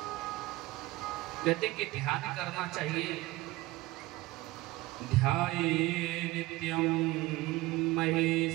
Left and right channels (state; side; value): quieter; left; 19.2 dB